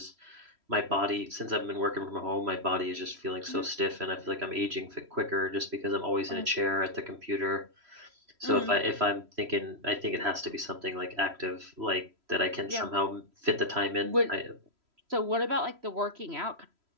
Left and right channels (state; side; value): late; left; 3.1 ms